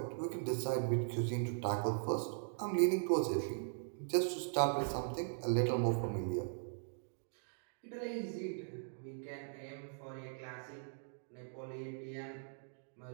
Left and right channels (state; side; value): silent; left; digital silence